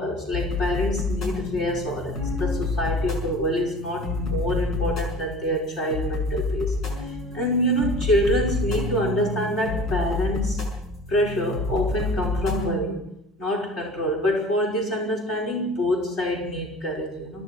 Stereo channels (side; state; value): both; normal; correlation 0.42